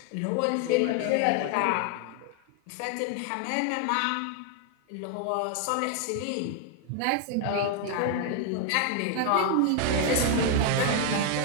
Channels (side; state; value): both; different; correlation 0.00